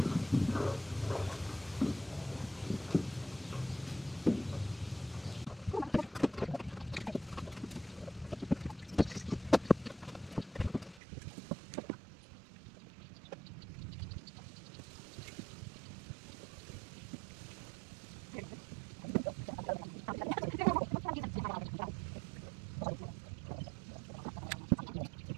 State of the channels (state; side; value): drops out; left; at 11.0 s